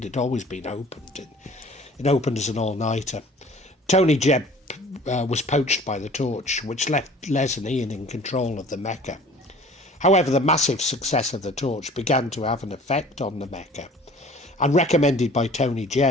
had always been opened. It opened as an all-nighter. Tony Jebb was poached by the Torch, which left Les and Ian in control of the Mecca. However, the massive success of the Torch began to have an effect on the Mecca, and recommended by Tony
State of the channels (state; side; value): normal; both; correlation 0.48